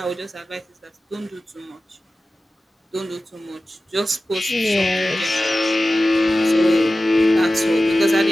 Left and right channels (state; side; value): normal; both; correlation 0.95